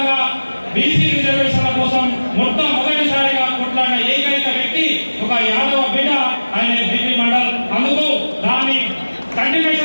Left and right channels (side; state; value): both; inverted; correlation -1.00